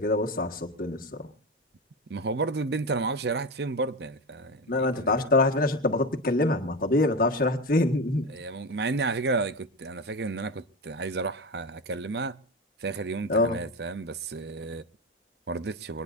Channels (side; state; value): both; normal; correlation 0.21